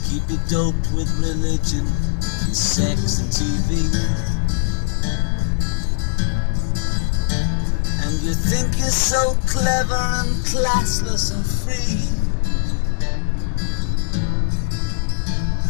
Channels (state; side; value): silent; right; digital silence